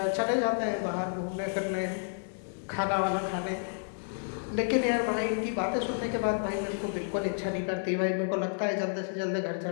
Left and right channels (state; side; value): silent; right; 57 dB below the other